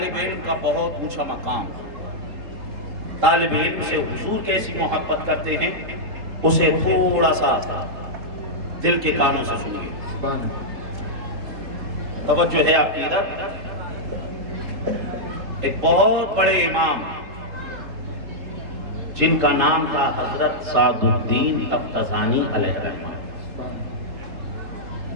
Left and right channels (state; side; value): late; left; 3.7 ms